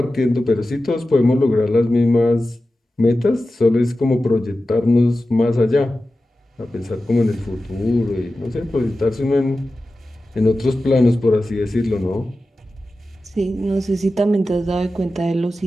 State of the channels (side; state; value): both; normal; correlation 0.94